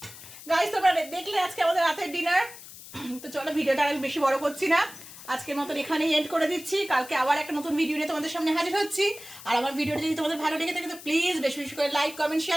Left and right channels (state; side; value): noise; left; hiss, 16 dB below the sound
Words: গাইস, তোমরা দেখলে আজকে আমাদের রাতের ডিনার। তো চলো ভিডিওটা আর বেশি বড় করছি না, আজকের মতন এখানেই এন্ড করে দিচ্ছি। কালকে আবার একটা নতুন ভিডিও নিয়ে তোমাদের সামনে হাজির হচ্ছি। আর আমার ভিডিওটা যদি তোমাদের ভালো লেগে থাকে তো প্লিজ বেশি বেশি করে লাইক, কমেন্ট,